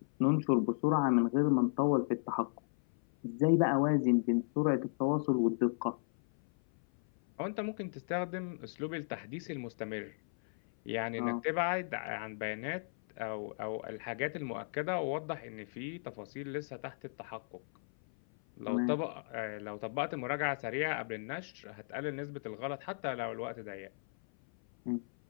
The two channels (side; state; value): right; silent; 54 dB below the other